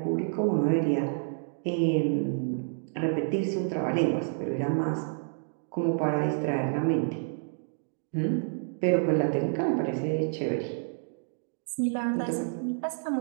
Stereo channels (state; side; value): silent; left; digital silence